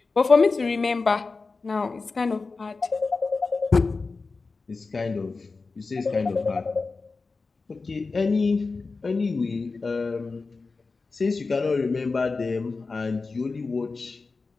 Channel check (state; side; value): quieter; right; 4.1 dB